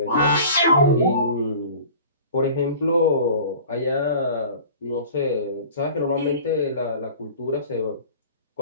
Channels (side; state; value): both; inverted; correlation -0.43